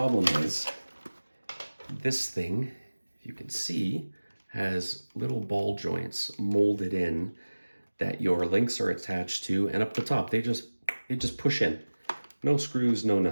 is this thing, if you can see, has little ball joints molded in that your links are attached to, and up the top, they just push in. No screws, no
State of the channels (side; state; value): both; inverted; correlation -1.00